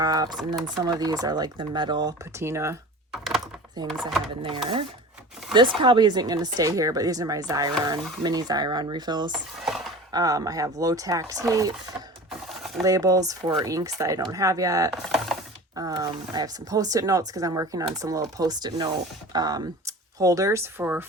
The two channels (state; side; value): normal; both; correlation 0.37